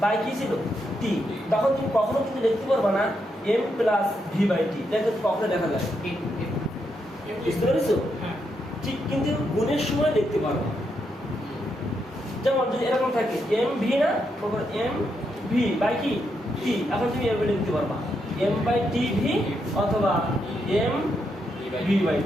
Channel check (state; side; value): normal; both; correlation 0.81